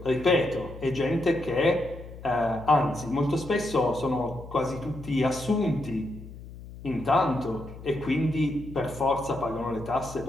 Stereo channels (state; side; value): noise; left; hum, 15 dB below the sound